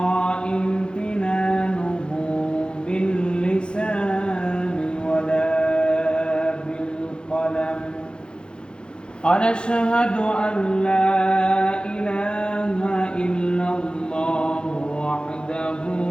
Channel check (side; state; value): right; late; 0.050 ms